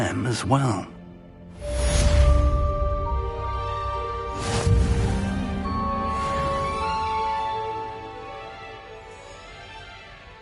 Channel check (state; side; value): identical; both; correlation 1.00